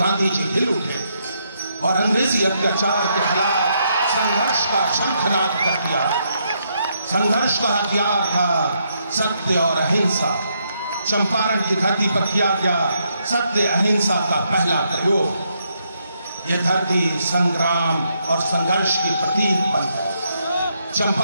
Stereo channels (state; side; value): inverted; both; correlation -0.77